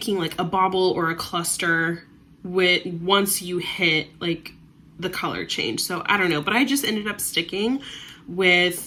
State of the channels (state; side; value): identical; both; correlation 1.00